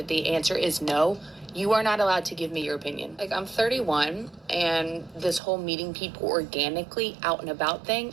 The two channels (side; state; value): left; drops out; at 5.4 s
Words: the answer is no, you are not allowed to give me your opinion. Like, I'm 31, and this whole meeting people organically out and about